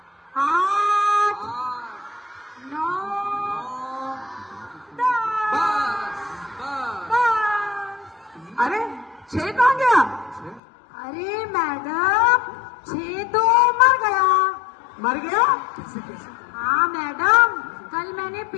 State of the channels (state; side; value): drops out; right; at 10.6 s